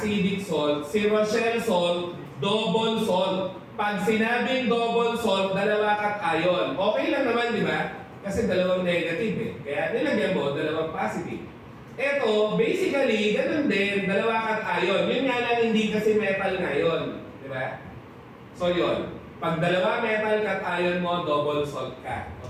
salt. Si Rochelle salt, double salt. Pag sinabing double salt, dalawa cation. Okay lang naman, di ba? Kasi dalawang negative eh. Kaya nilagyan mo, dalawang positive. Eto, basically, ganun din, dalawa cation. Yun nga lang, hindi kasi metal ngayon. Di ba? So yun, pag dalawa metal cation mo, double salt ka,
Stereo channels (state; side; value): identical; both; correlation 1.00